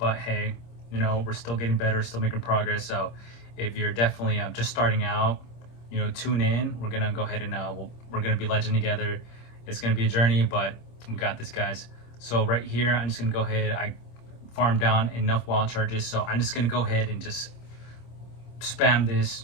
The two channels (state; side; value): late; right; 26 ms